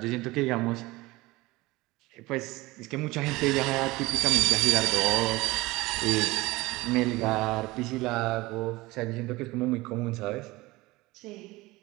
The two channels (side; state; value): left; quieter; 20.8 dB